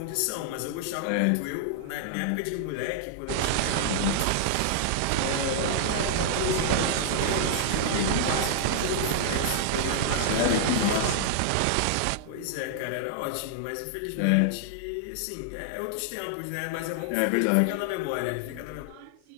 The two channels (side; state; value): both; different; correlation -0.01